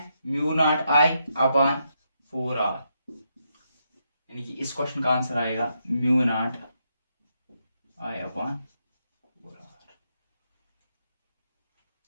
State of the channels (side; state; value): both; inverted; correlation -0.80